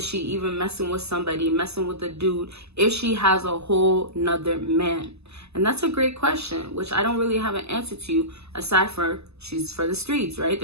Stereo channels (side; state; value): left; late; 0.79 ms